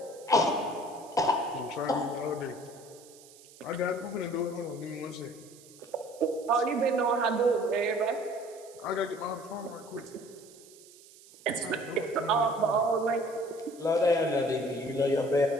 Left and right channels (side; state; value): right; noise; hiss, 22 dB below the sound